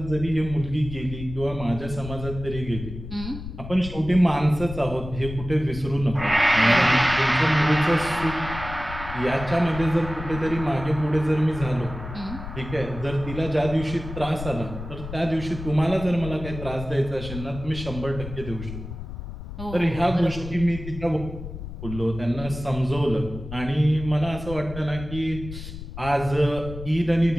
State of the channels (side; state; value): left; noise; rumble, 10 dB below the sound